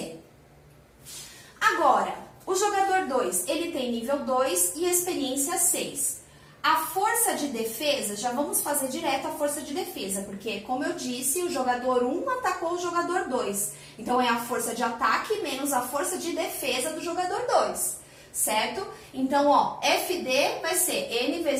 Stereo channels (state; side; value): identical; both; correlation 1.00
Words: Agora, o jogador 2, ele tem nível 2 e experiência 6. A força de defesa, já vamos fazer direto a força de defesa, porque, como eu disse, o jogador 1 atacou o jogador 2. Então, é a força de ataque menos a força de defesa do jogador 2, certo? Então, ó, FD vai ser N